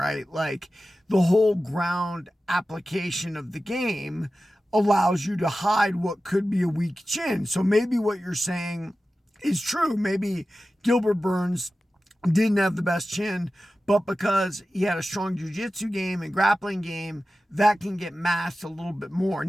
Like the whole ground application of the game allows you to hide what could be a weak chin. So maybe what you're saying is true. Maybe Gilbert Burns didn't have the best chin, but because he had a strong jiu-jitsu game and grappling game, that can get masked a little bit more.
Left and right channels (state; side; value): normal; both; correlation 0.94